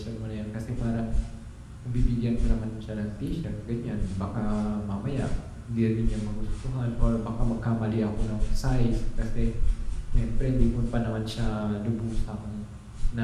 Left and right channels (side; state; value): both; identical; correlation 1.00